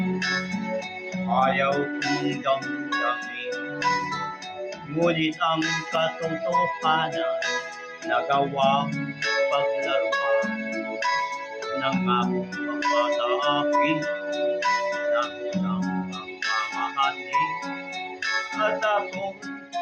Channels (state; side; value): identical; both; correlation 1.00